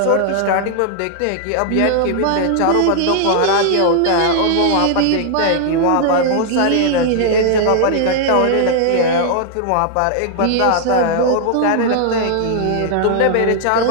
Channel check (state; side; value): different; both; correlation 0.00